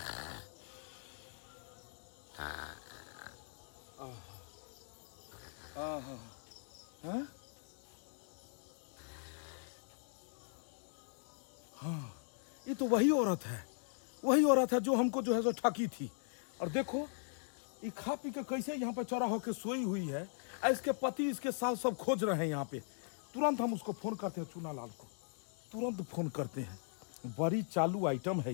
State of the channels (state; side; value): silent; right; digital silence